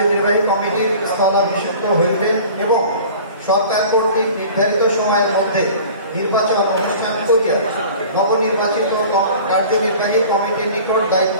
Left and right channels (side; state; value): both; inverted; correlation -0.43